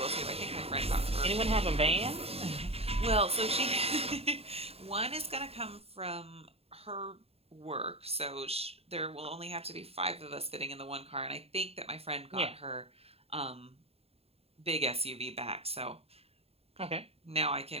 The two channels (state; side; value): late; left; 0.29 ms